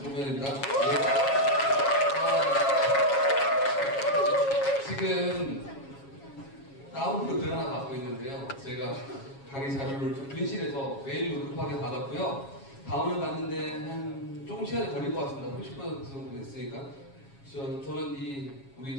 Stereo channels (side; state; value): right; late; 7.3 ms